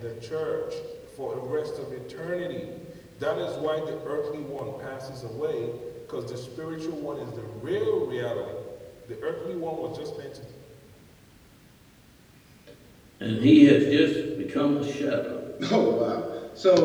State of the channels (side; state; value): both; identical; correlation 1.00